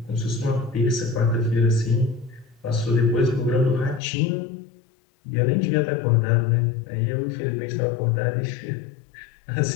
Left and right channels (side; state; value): right; drops out; at 4.0 s